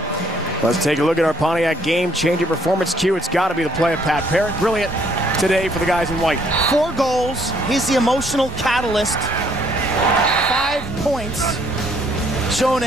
Let's take a look at our Pontiac game-changing performance cue. It's got to be the play of Pat Parrott. Brilliant today for the guys in white. 4 goals. He's the emotional catalyst. 5 points. Showing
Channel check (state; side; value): normal; both; correlation 0.66